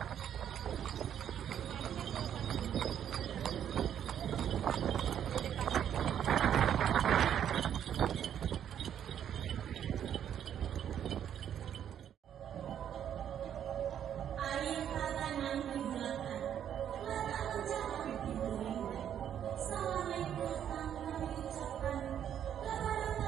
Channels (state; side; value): quieter; left; 9.6 dB